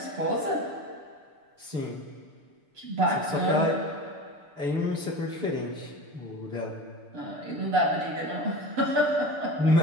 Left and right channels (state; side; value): late; left; 6.8 ms